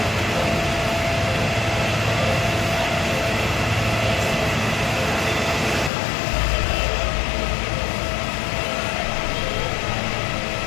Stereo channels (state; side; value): drops out; right; at 5.9 s